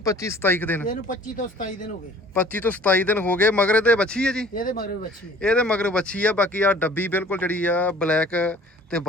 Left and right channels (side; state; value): both; normal; correlation 0.50